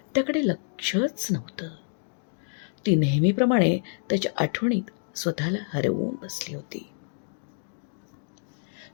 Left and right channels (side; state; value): right; silent; digital silence